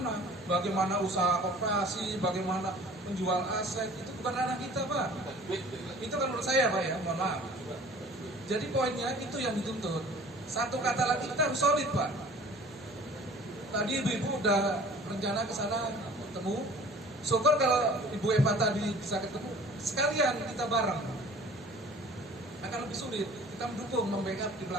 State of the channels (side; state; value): both; normal; correlation 0.47